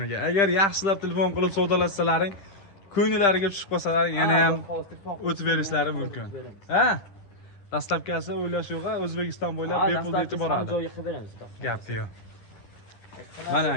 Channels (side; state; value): right; late; 10 ms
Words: Agar yaxshilab telefon qilib savdolashsalaring, ko'ngillariga tushib qolsalar, yana ham o'tib berishlari mumkin. Ha? Dastlabkasi o'ylash yo'q, O'zbekiston bo'ylab bepul yetib boradi. joyga qilib beramiz. Gap yo'q. Mana